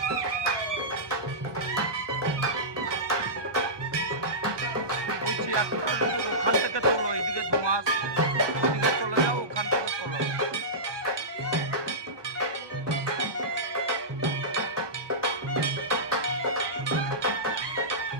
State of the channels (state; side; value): late; left; 1.2 ms